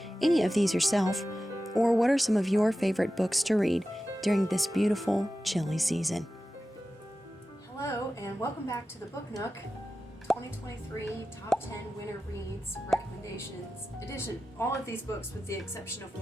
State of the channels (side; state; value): both; normal; correlation 0.93